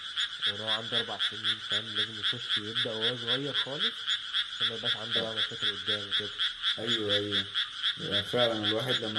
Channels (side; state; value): both; identical; correlation 1.00